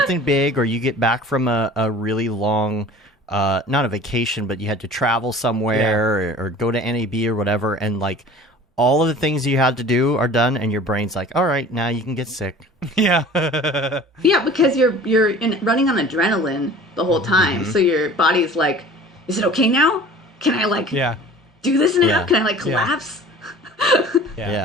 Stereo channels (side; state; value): both; normal; correlation 0.44